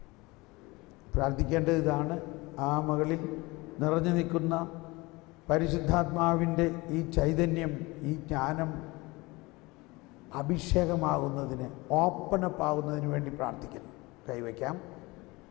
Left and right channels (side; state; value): right; quieter; 23.2 dB